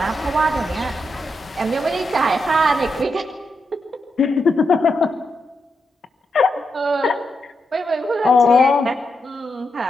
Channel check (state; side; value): normal; both; correlation 0.85